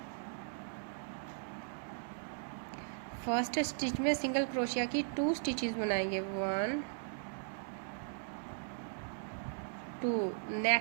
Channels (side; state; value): left; silent; digital silence